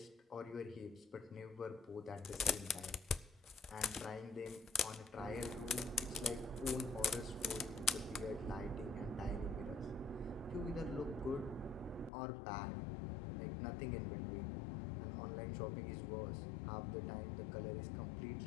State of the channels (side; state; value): right; drops out; at 12.1 s